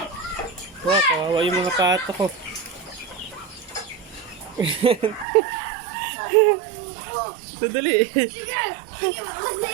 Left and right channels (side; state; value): left; drops out; at 5.2 s